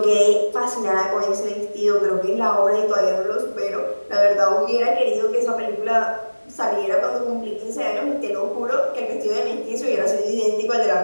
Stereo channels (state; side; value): inverted; both; correlation -1.00